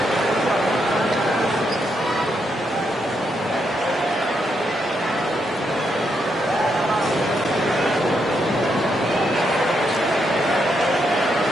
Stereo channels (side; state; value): both; normal; correlation 0.79